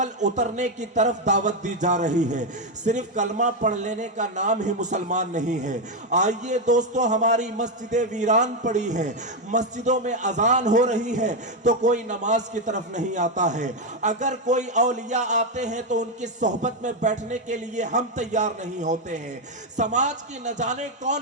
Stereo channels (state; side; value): normal; both; correlation 0.05